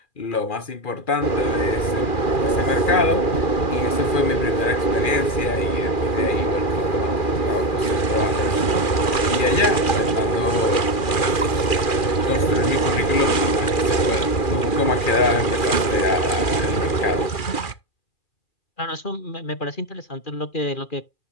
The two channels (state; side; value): late; right; 2.4 ms